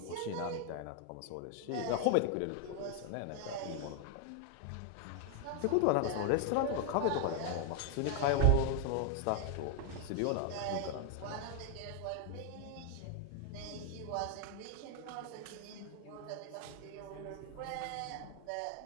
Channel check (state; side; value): different; both; correlation 0.00